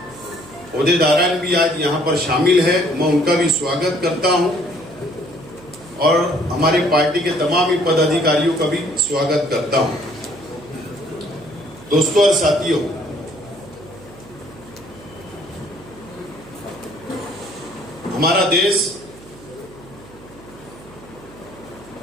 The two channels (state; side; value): noise; right; hum, 21 dB below the sound